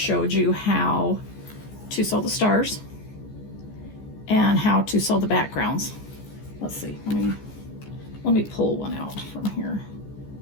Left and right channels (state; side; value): late; right; 14 ms